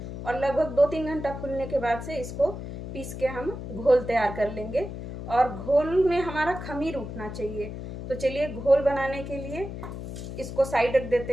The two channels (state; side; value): noise; left; hum, 8 dB below the sound